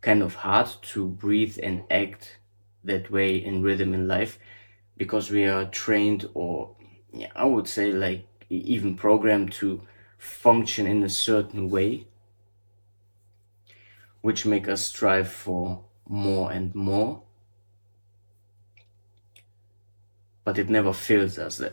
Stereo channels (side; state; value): both; inverted; correlation -1.00